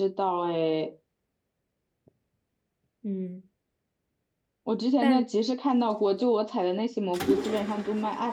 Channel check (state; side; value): identical; both; correlation 1.00